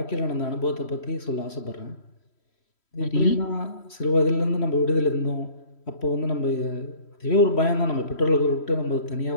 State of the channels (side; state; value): right; late; 3.1 ms